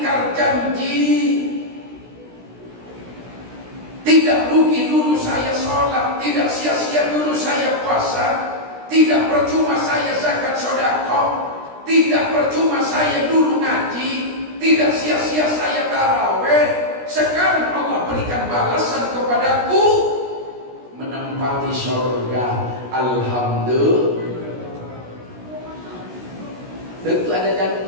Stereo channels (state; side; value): late; left; 16 ms